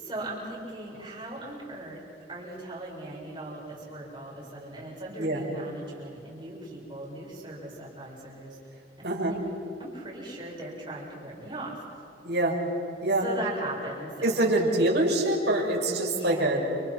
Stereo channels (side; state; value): both; normal; correlation 0.19